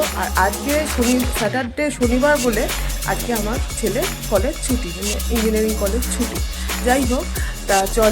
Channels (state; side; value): identical; both; correlation 1.00